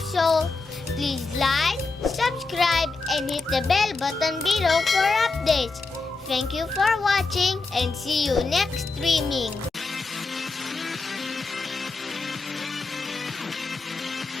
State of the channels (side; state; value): right; quieter; 3.8 dB